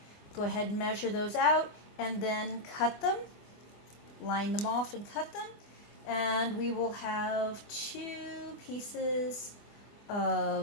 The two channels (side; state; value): right; late; 24 ms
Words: Go ahead and measure those out and then cut them, line them off and cut them. And we will have 2 pieces